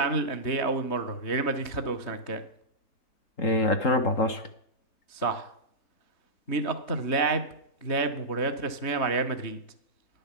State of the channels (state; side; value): late; right; 3.2 ms